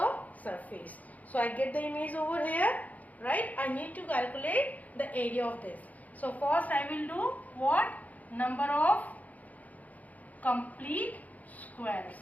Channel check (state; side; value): late; right; 0.076 ms